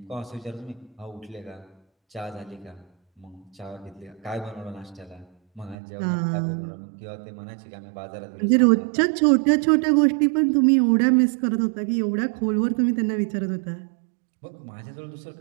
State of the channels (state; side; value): drops out; left; at 5.8 s